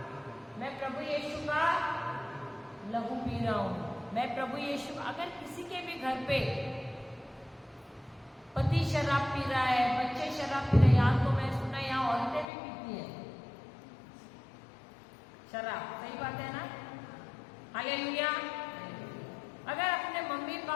लहू पी रहा हूं। मैं प्रभु यीशु। अगर किसी के भी घर पे पति शराब पी रहा है, बच्चे शराब पी रहे हैं, यहाँ तो मैं सुना यहाँ औरतें भी पीती हैं शराब, सही बात है ना? हालेलुया। अगर अपने मम्मी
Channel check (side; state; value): right; drops out; at 12.5 s